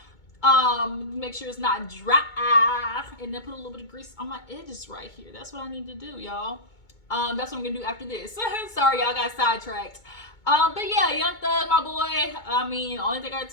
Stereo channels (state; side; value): late; right; 2.2 ms